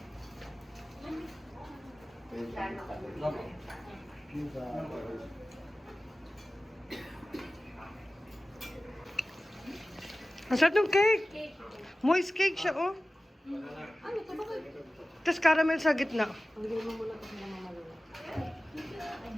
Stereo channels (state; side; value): normal; both; correlation 0.96